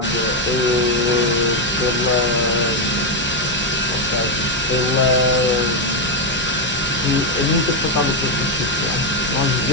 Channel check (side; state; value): both; normal; correlation 0.04